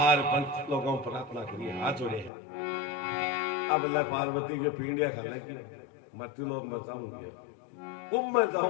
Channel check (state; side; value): drops out; right; at 2.3 s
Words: पंच लोगों प्रार्थना करिए, हाथ जोड़े हैं। अब ले पार्वती के पिंडिया खा ले की मृत्यु लोक में जाऊंगी, कुंभ में